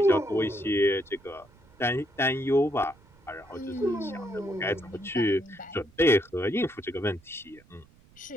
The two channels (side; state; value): right; noise; rumble, 28 dB below the sound